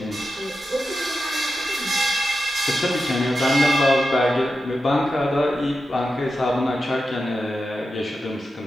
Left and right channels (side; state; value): both; normal; correlation 0.90